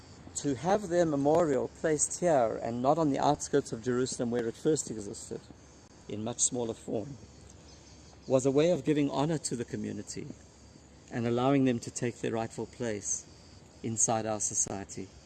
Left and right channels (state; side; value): identical; both; correlation 1.00